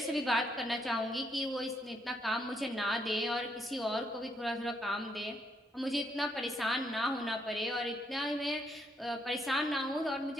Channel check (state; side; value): normal; both; correlation 0.74